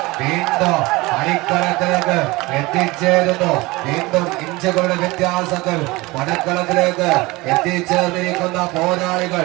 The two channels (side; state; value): left; quieter; 22.0 dB